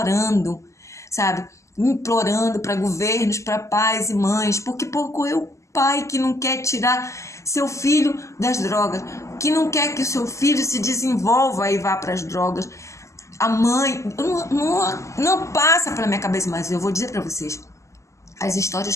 sabe? implorando para governos, para pais e mães, porque pouco é o pai que não quer tirar seu filho das drogas, que não quer que o seu filho se desenvolva e vá para as drogas. A mãe, não passa pela minha cabeça, mas eu vou dizer para vocês, as histórias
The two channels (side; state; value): right; late; 0.14 ms